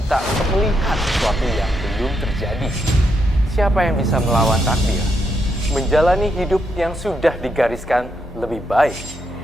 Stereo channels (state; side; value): normal; both; correlation 0.80